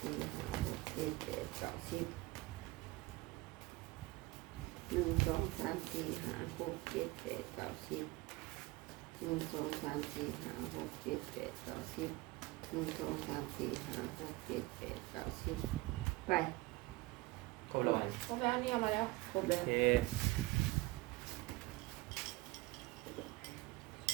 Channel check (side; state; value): left; quieter; 21.2 dB